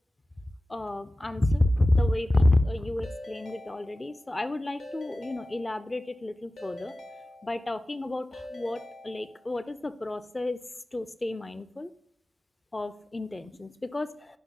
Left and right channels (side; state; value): both; normal; correlation 0.96